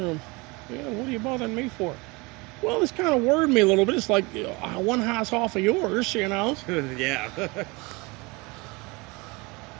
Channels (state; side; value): quieter; left; 25.9 dB